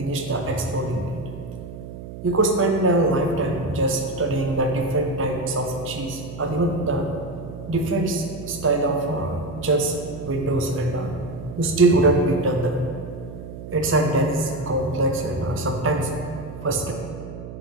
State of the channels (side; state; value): right; noise; hum, 11 dB below the sound